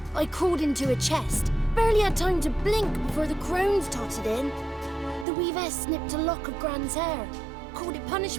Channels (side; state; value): left; drops out; at 5.2 s